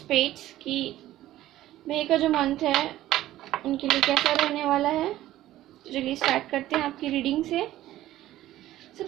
की मई का जो मंथ है उनके लिए कैसा रहने वाला है। तो चलिए स्टार्ट करते हैं आपकी रीडिंग से।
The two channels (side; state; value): left; quieter; 14.5 dB